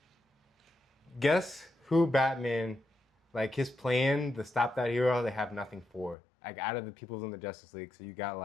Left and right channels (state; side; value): drops out; right; at 6.2 s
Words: guess who Batman, like his plan to stop that hero, they have nothing for. Like out of the people in the Justice League. So you got